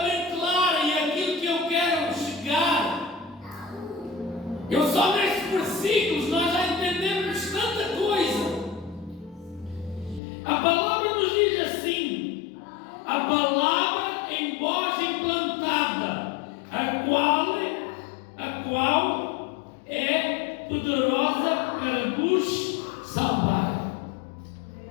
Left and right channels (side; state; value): right; drops out; at 10.2 s